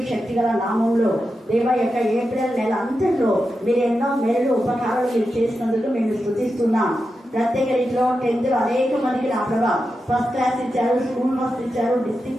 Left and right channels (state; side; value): normal; both; correlation 0.89